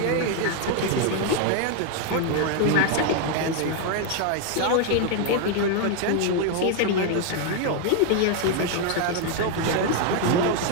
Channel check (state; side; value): different; both; correlation 0.00